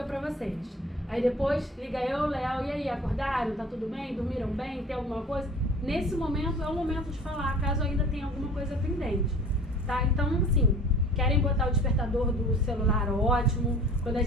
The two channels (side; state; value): both; normal; correlation 0.45